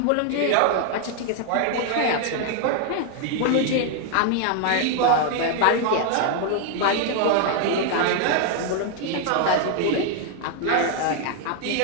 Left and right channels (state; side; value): different; both; correlation 0.00